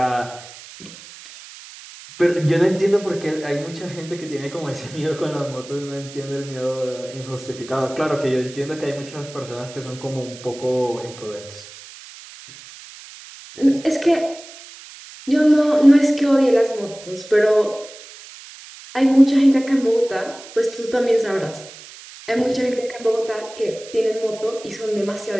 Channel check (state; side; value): noise; right; hiss, 17 dB below the sound